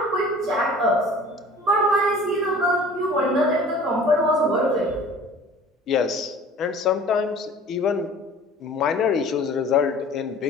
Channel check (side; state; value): both; normal; correlation 0.46